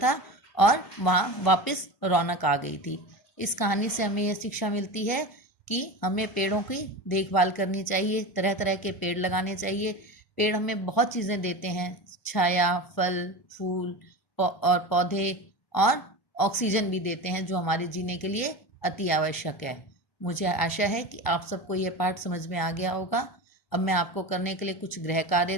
और वहाँ वापस रौनक आ गई थी। इस कहानी से हमें यह शिक्षा मिलती है कि हमें पेड़ों की देखभाल करनी चाहिए, तरह तरह के पेड़ लगाने चाहिए। पेड़ हमें बहुत चीज़ें देते हैं, छाया, फल, फूल और पौधे और ऑक्सीजन भी देते हैं जो हमारे जीने के लिए अति आवश्यक है। मुझे आशा है कि आप सबको ये पाठ समझ में आ गया होगा। अब मैं आपको करने के लिए कुछ गृह कार्य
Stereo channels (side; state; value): right; late; 1.0 ms